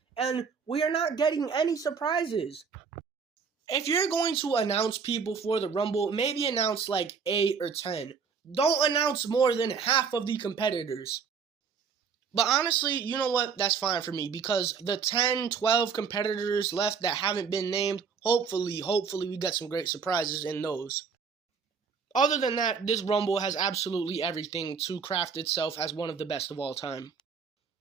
and we are not getting any surprises. If you're going to announce people for the Rumble, maybe announce like 8 or 10. Don't announce more than half of the competitors. But honestly, you know what? That's fine for me because the 10, 12 competitors left that haven't been named, hopefully we get some great surprises in those. Other than that, this Rumble has absolutely everything to craft itself as one of the best of all time.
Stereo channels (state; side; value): quieter; left; 6.0 dB